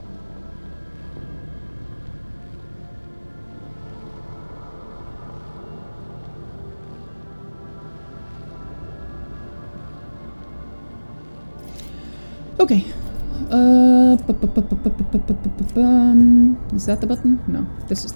Okay. Is that the button? No, this is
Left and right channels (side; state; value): both; inverted; correlation -1.00